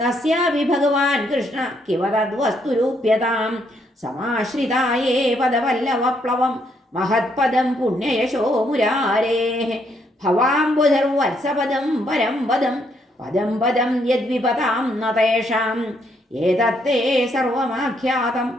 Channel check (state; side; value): normal; both; correlation 0.73